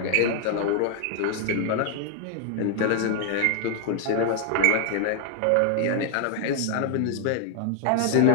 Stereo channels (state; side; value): different; both; correlation 0.00